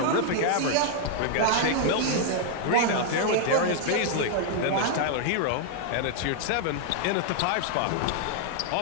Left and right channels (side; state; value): both; different; correlation 0.00